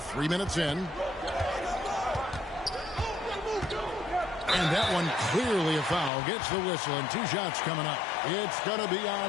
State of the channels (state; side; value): drops out; right; at 6.1 s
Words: minutes in. And that one clearly a foul. Gets the whistle, and 2 shots coming up. It's going to be